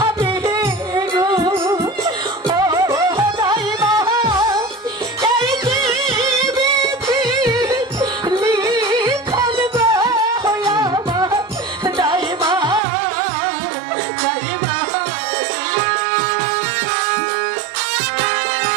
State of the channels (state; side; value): drops out; left; at 12.8 s